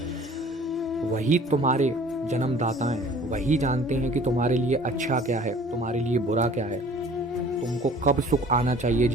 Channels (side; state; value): both; normal; correlation 0.50